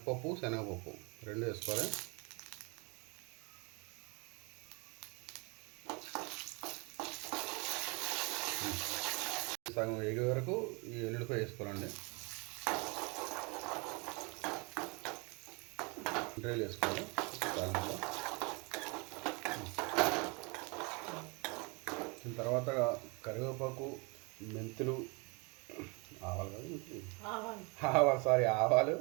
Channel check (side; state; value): left; quieter; 29.5 dB